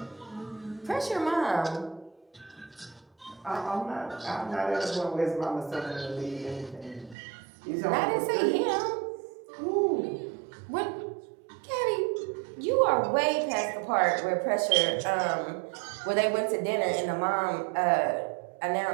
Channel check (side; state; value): left; drops out; at 7.2 s